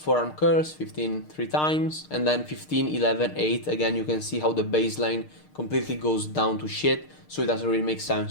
curls, 15 3 times, and then 15, 11, 8. Again, you can see how the baseline completely goes down to shit, so it doesn't really make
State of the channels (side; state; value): right; late; 6.6 ms